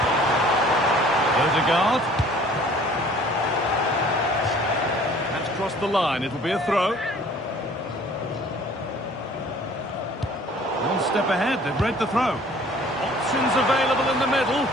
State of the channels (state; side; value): normal; both; correlation 0.52